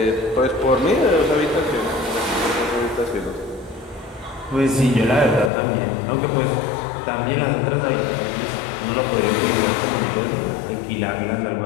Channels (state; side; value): drops out; right; at 5.5 s